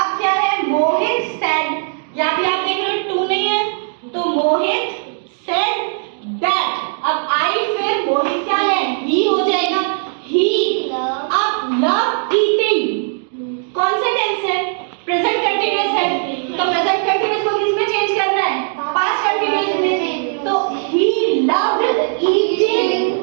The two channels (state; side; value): silent; left; 62 dB below the other